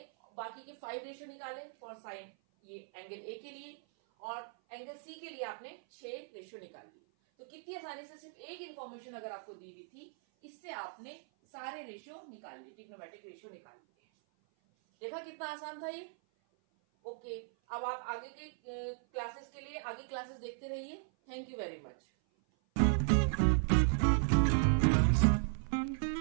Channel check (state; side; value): silent; left; 53 dB below the other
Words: बाकी के 5 रेशियो निकाले फॉर साइन ये एंगल A के लिए, और एंगल C के लिए आपने 6 रेशियो निकाल लिए। तो कितनी आसानी से सिर्फ एक इंफॉर्मेशन अगर आपको दी हुई थी, इससे आपने सारे रेशियो निकाल लिए, ट्रिग्नोमेट्रिक रेशियो निकाल लिए। देखा कितना आसान था ये। ओके, अब आप आगे के क्लासेस के लिए आगे क्लासेस देखते रहिए। Thank you very much.